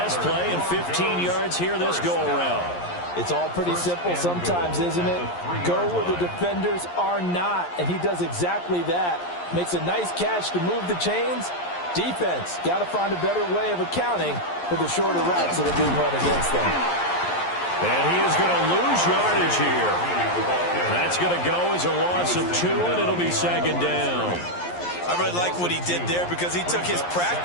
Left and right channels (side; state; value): right; late; 11 ms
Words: play and 15 yards here this go-around. It's all pretty simple sometimes, isn't it? Go where the defenders are not, and he does exactly that. Makes a nice catch to move the chains. Defense, got to find a better way of accounting for the shorter routes that are being run against them. And he is going to lose yardage here. That's going to go as a loss of 2, and it'll be second down. I really like what he did there because he took his